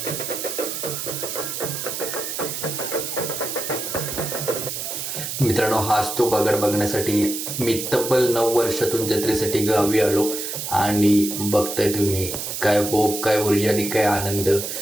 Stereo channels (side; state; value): right; noise; hiss, 5 dB below the sound